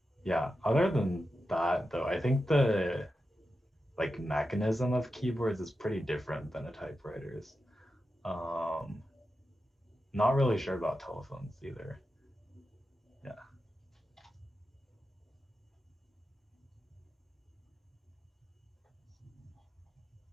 yeah, other than that though, I think the like mechanism of keyboards is pretty different than a typewriter's. Um, not really sure about telephones either. Yeah.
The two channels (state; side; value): normal; both; correlation 0.90